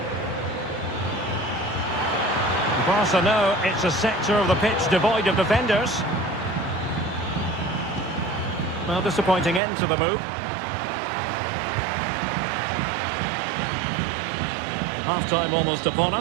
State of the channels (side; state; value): left; drops out; at 9.6 s